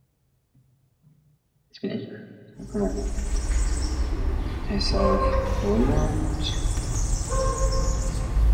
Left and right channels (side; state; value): both; identical; correlation 1.00